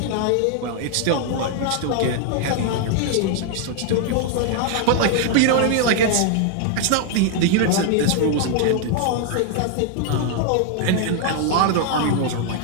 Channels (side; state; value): both; different; correlation 0.00